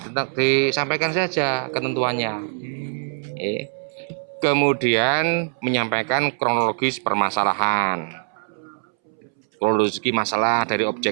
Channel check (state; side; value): silent; left; 64 dB below the other